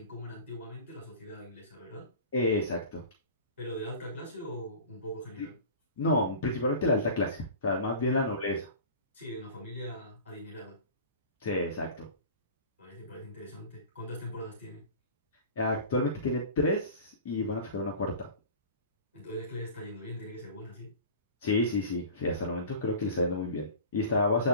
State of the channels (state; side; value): inverted; both; correlation -0.38